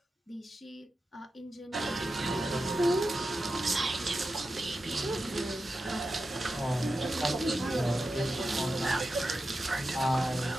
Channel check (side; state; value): both; normal; correlation 0.91